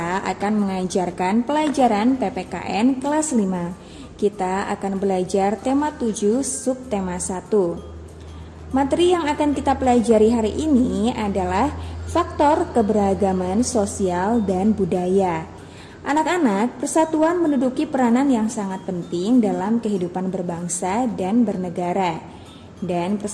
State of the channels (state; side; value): identical; both; correlation 1.00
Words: akan mengajarkan pelajaran PPKN kelas 5. Kita akan belajar tema 7 subtema 1. Materi yang akan kita pelajari hari ini adalah faktor keberagaman sosial dan budaya. Anak-anak, persatuan menduduki peranan yang sangat penting dalam kehidupan berbangsa dan bernegara. Dan